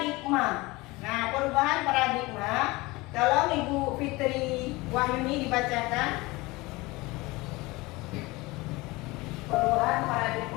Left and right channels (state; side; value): quieter; right; 22.2 dB